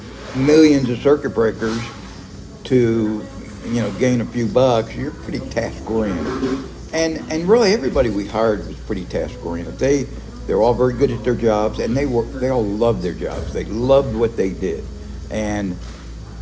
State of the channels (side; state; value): both; identical; correlation 1.00